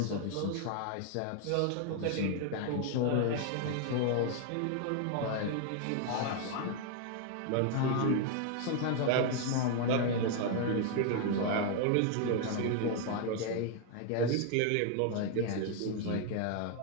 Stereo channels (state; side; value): different; both; correlation 0.00